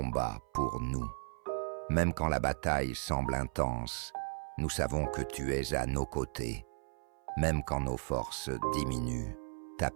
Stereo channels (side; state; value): left; silent; 54 dB below the other